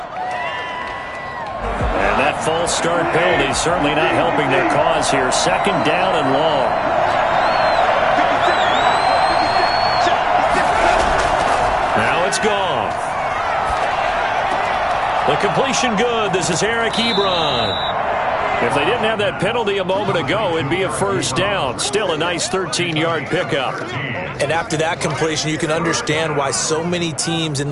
False start penalty certainly not helping their cause here. 2nd down and long. Now it's Goff. The completion good. This is Eric Ebron. If they didn't have that penalty a moment ago, it'd be a 1st down. Still a nice 13-yard pickup. And after that completion, you can understand why so many teams in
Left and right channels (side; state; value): both; identical; correlation 1.00